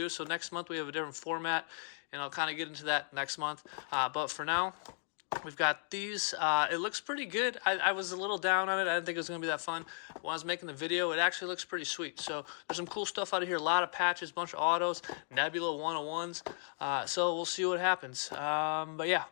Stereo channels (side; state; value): right; silent; 54 dB below the other